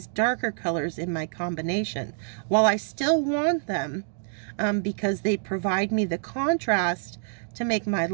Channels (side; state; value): left; silent; digital silence